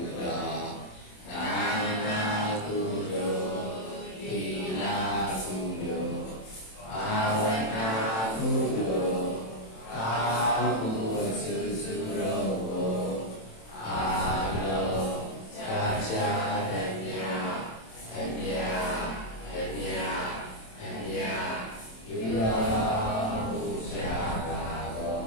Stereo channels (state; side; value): late; right; 27 ms